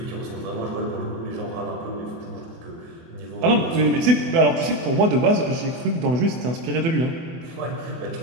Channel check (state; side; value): late; left; 24 ms